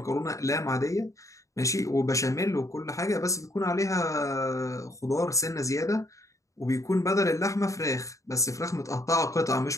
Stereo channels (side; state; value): right; late; 0.15 ms